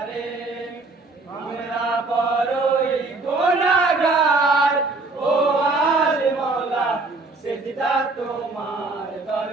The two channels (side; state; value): left; quieter; 3.4 dB